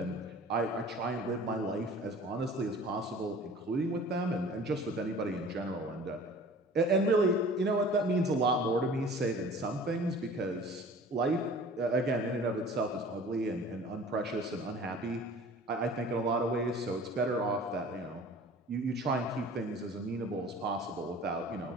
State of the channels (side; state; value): both; normal; correlation 0.45